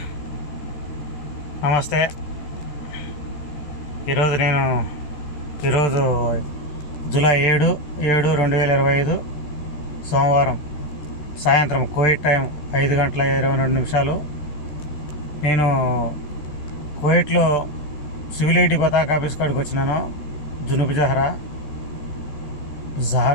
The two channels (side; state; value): right; late; 13 ms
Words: నమస్తే. ఈరోజు జూలై 7/7/2025 సోమవారం సాయంత్రం కువైట్ టైం 5:22. నేను కువైట్లో సివిల్ ఐడి పతాక ఆఫీస్ కాడికి వచ్చినాను. జునూబ్ జహరా